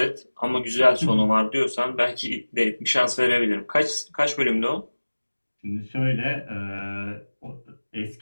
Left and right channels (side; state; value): both; inverted; correlation -1.00